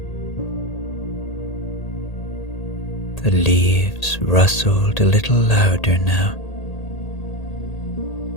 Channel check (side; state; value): right; late; 1.8 ms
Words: The leaves rustled a little louder now,